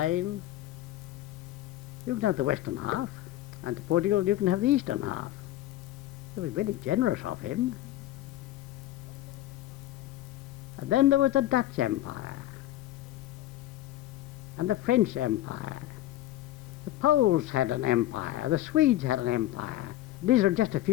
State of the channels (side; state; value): right; quieter; 14.3 dB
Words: you can have the western half, and to Portugal you can have the eastern half. It was very generous of him. And then there was the Dutch Empire, and the French Empire. The Poles had an empire, the Swedes had an empire. These are just a